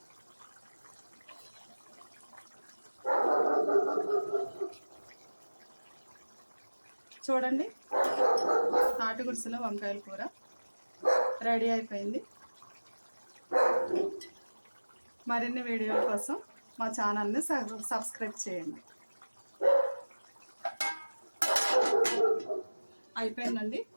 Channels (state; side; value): inverted; both; correlation -1.00